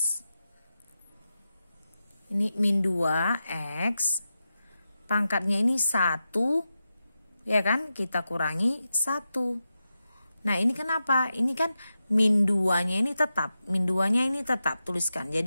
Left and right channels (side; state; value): both; inverted; correlation -0.90